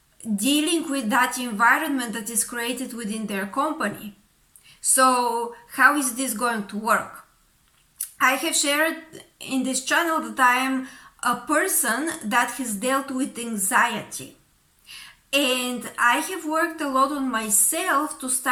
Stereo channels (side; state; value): both; identical; correlation 1.00